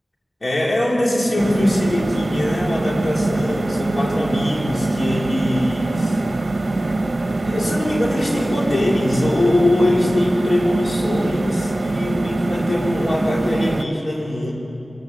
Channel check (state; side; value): normal; both; correlation 0.96